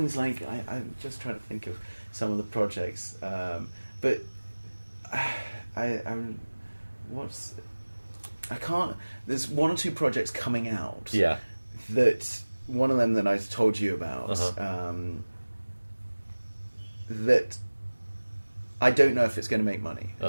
like I'm just trying to think of some of the projects, but I'm what's I can't. There's one or two projects coming out. Yeah. That one of them that I told you about. Uh-huh. That I don't know if it's going to make money.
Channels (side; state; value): both; inverted; correlation -1.00